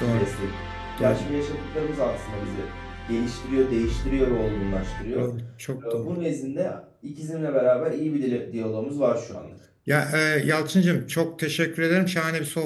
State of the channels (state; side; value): identical; both; correlation 1.00